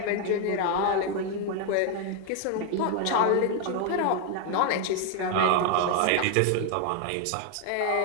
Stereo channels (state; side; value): different; both; correlation 0.01